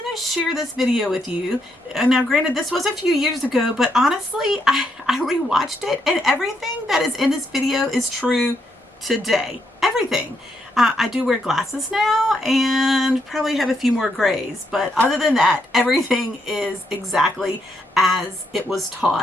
to share this video with you. And now granted, this was a few years ago, but honestly, I rewatched it and everything that is in this video is true today. Everything. I do wear glasses now and probably have a few more grays, but other than that, everything is exactly as it was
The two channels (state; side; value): normal; both; correlation 0.77